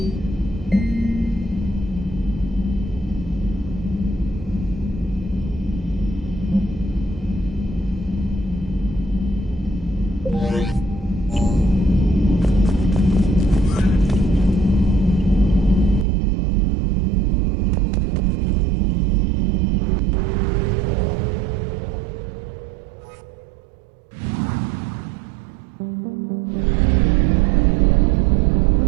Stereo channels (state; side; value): drops out; left; at 16.1 s